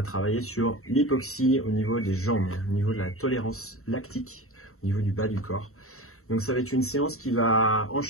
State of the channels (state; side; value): late; right; 0.63 ms